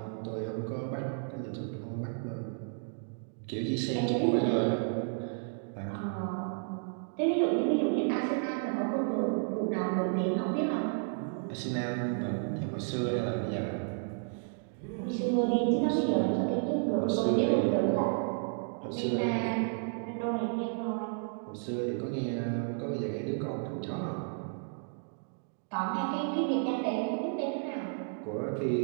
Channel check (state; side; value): silent; left; 56 dB below the other